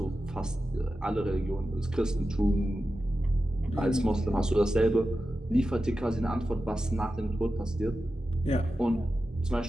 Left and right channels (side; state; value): both; normal; correlation 0.92